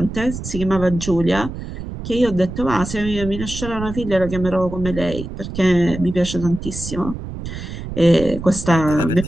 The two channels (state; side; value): noise; right; rumble, 8 dB below the sound